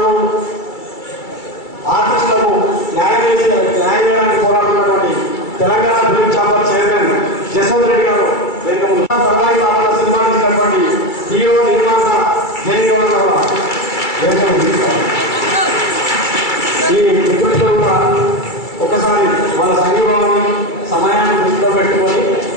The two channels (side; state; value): right; late; 2.3 ms